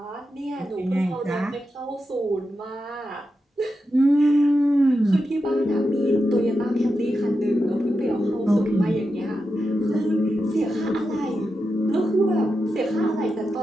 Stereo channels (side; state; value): both; normal; correlation 0.89